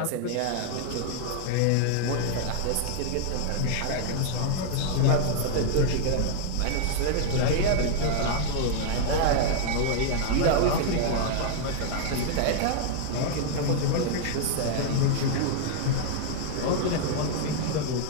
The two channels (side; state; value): both; different; correlation 0.00